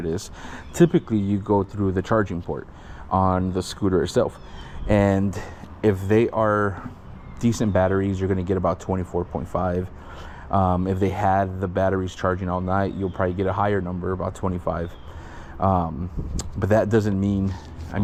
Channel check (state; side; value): identical; both; correlation 1.00